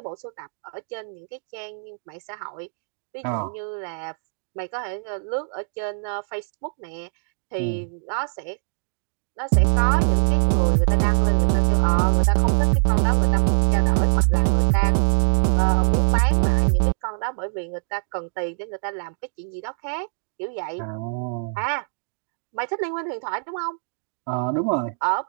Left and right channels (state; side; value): silent; left; digital silence